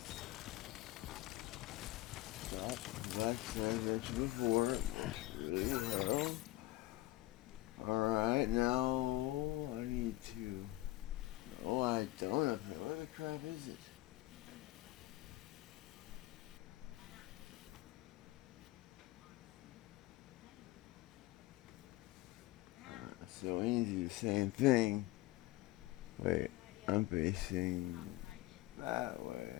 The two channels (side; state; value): right; quieter; 17.9 dB